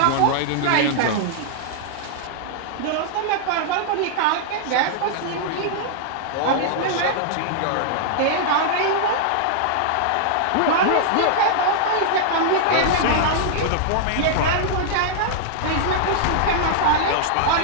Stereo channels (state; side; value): different; both; correlation -0.01